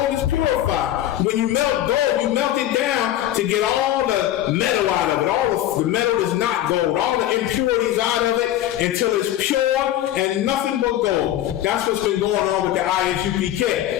is purified. When you melt gold, you melt it down to get all the metal out of it. All the metal is not gold. All the impurities out of it until it's pure and nothing but gold. That's what's been going on with the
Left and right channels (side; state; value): right; quieter; 12.8 dB